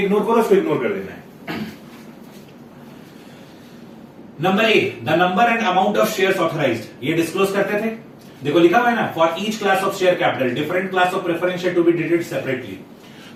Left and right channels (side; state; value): both; identical; correlation 1.00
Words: करो उसको इग्नोर कर देना है। Number A, the number and amount of shares authorised, ये डिस्क्लोज करते थे। देखो लिखा हुआ है ना, for each class of share capital different class of preference share to be detailed separately.